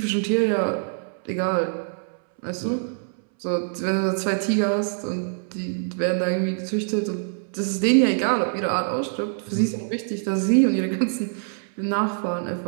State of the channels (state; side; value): silent; left; 62 dB below the other